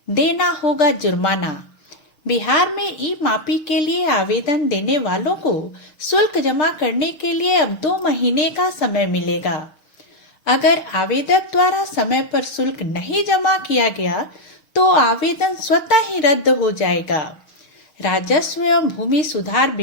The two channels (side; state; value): right; late; 6.4 ms